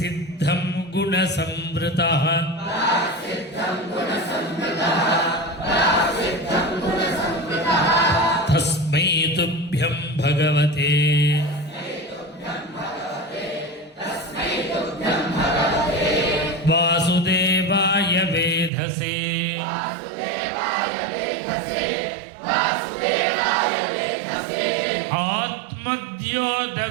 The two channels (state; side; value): drops out; left; at 18.7 s